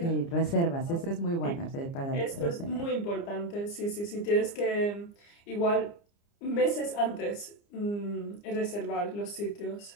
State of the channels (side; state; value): right; late; 29 ms